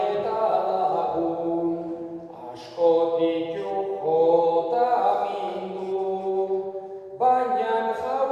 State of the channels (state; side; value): identical; both; correlation 1.00